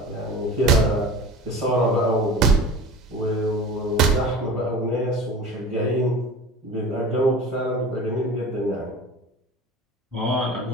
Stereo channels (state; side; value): normal; both; correlation 0.37